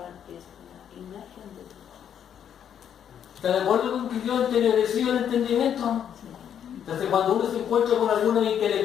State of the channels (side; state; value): right; quieter; 9.0 dB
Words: es la imagen de Dios. ¿Está de acuerdo con que quedó entenebrecido el entendimiento? Entonces cuando uno se encuentra con algunos